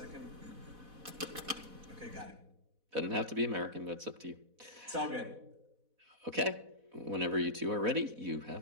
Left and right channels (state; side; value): late; left; 4.1 ms